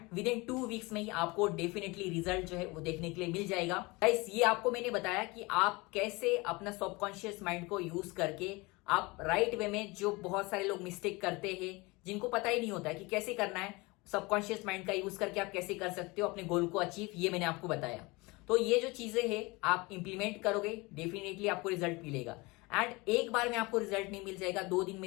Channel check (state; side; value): quieter; right; 24.5 dB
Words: विद इन 2 वीक्स में ही आपको डेफिनेटली रिजल्ट जो है वो देखने के लिए मिल जाएगा। गाइस, ये आपको मैंने बताया कि आप कैसे अपना सबकॉन्शियस माइंड को यूज करके आप राइट वे में, जो बहुत सारे लोग मिस्टेक करते हैं जिनको पता ही नहीं होता है कि कैसे करना है, सबकॉन्शियस माइंड का यूज करके आप कैसे कर सकते हो अपने गोल को अचीव, ये मैंने आपको बताया। तो ये जो चीजें हैं आप इंप्लीमेंट करोगे, डेफिनेटली आपको रिजल्ट मिलेगा। एंड एक बार में आपको रिजल्ट नहीं मिल जाएगा, 2 दिन में